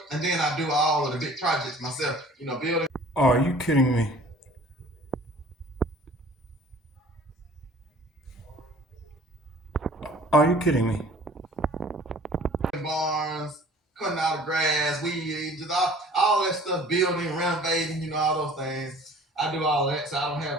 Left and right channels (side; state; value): both; normal; correlation 0.50